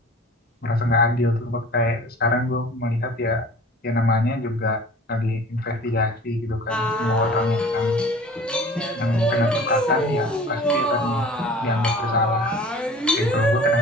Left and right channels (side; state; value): both; normal; correlation 0.44